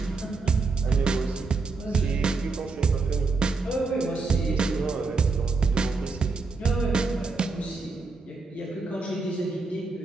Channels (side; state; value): left; quieter; 4.0 dB